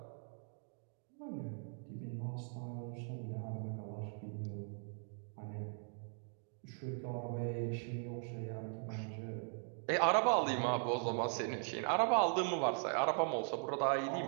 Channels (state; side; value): silent; left; 51 dB below the other